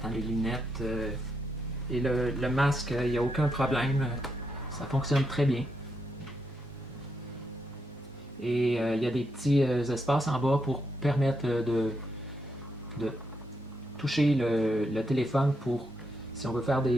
les lunettes et le masque, il n'y a aucun problème. Ça fonctionne très bien. Et il y a des petits espaces en bas pour permettre de toucher le téléphone pour si on veut faire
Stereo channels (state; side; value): normal; both; correlation 0.81